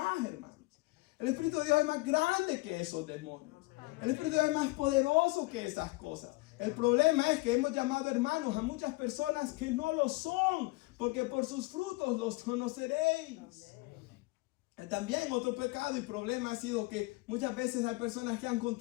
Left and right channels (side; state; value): right; quieter; 23.2 dB